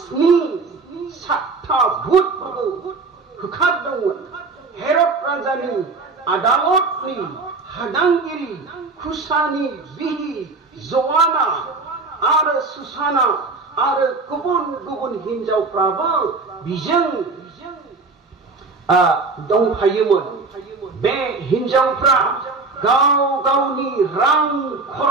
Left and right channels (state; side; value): quieter; left; 3.9 dB